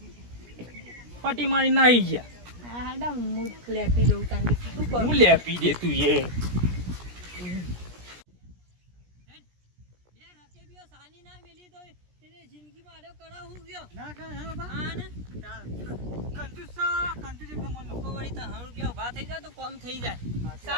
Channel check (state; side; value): late; left; 17 ms